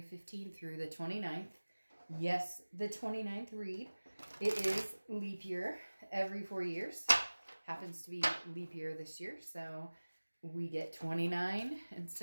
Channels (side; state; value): both; inverted; correlation -1.00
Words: 15th through the 29th. Yes, the 29th read. It is leap year every 4 years. Happens to be leap year this year, so we get 29